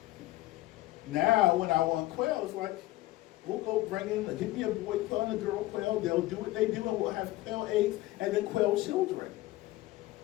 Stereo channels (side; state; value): right; quieter; 17.5 dB